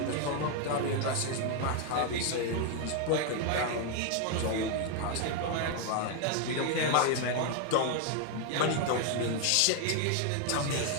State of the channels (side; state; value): both; different; correlation 0.01